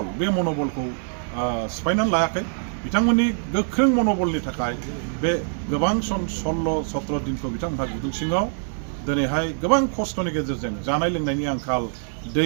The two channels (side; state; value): left; silent; digital silence